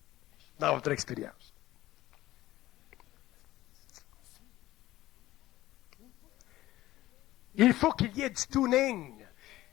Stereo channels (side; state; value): right; quieter; 16.2 dB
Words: dans votre expérience. Il faut qu'il y ait du tuning.